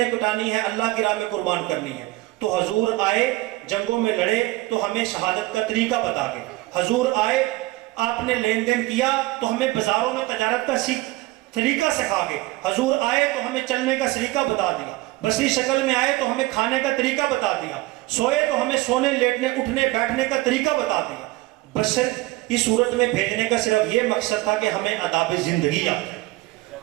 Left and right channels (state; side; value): quieter; left; 20.0 dB